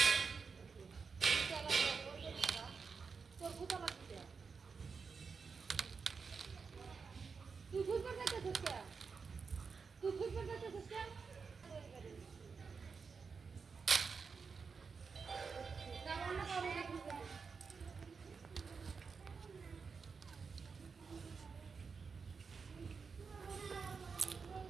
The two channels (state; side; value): quieter; left; 5.3 dB